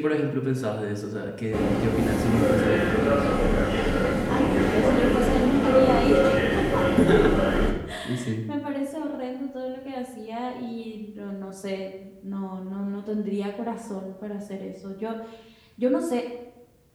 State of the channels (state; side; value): identical; both; correlation 1.00